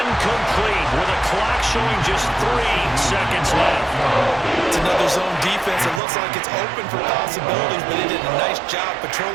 with a clock showing just 3 seconds left. It's another zone defense. It looks like it's open for possibilities, but they did a nice job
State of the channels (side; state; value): left; drops out; at 6.0 s